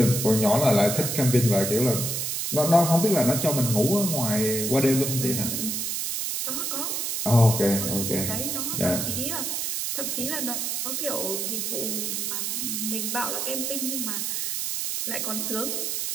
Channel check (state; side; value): noise; right; hiss, 1 dB below the sound